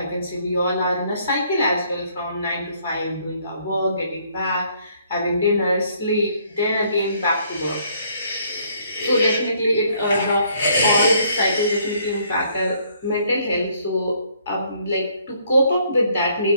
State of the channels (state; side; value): inverted; both; correlation -0.66